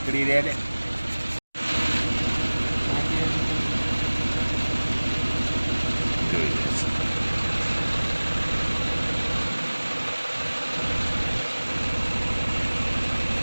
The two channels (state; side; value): inverted; both; correlation -1.00